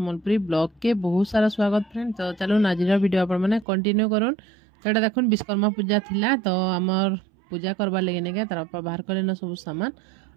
ब्लॉग के बहुत सारा स्वागत फ्रेंड। तो चलो नाजीर वीडियो अपन माने कंटिन्यू करूँ। तो एटा देखुन विश्वकर्मा पूजा थिला तो आमर पूजा करबा लगे ने तार बापा बाहर कले न सब सामान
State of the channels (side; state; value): left; drops out; at 3.7 s